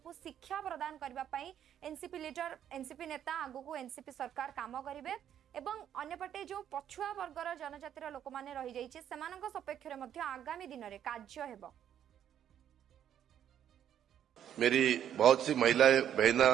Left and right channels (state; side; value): quieter; left; 9.9 dB